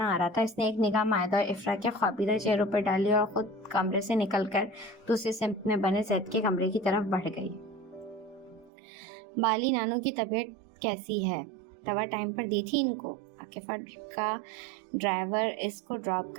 آ رہا تھا۔ اس نے ایک نگاہ مائدہ اور افرا کے خوابیدہ چہروں پر ڈالی اور خود کمرے سے نکل کر دوسری سمت میں بنے زید کے کمرے کی طرف بڑھ گئی۔ بالی نانو کی طبیعت کیسی ہے؟ دوا ٹائم پر دی تھی ان کو؟ عاقفہ کا ڈرائیور اس کو ڈراپ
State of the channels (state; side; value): drops out; left; at 8.7 s